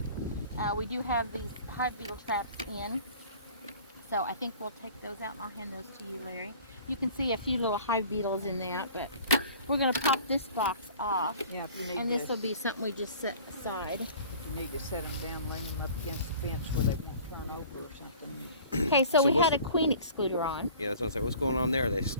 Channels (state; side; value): inverted; both; correlation -0.46